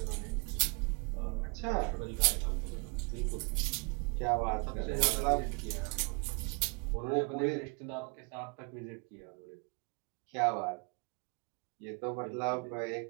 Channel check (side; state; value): left; quieter; 32.2 dB